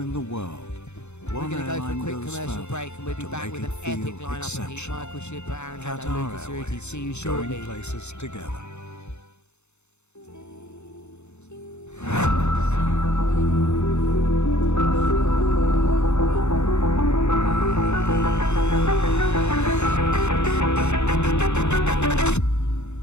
the world, We're one going to go for a airline quick goes commercial further break, and we'll be to back make with it an epic feel lineup of heat. exceptional. Michael Shipper, Aaron Hadlow, Qatar Lucas Cerruti. Airways, See you shortly. going places together.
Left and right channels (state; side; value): late; right; 0.82 ms